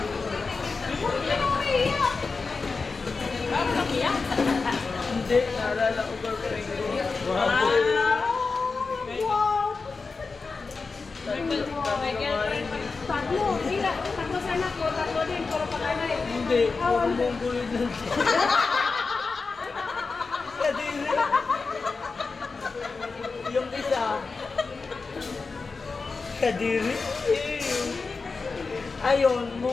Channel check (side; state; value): right; quieter; 4.3 dB